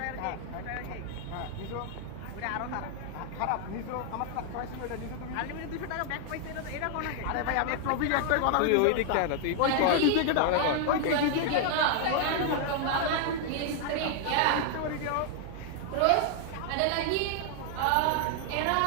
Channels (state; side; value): different; both; correlation 0.00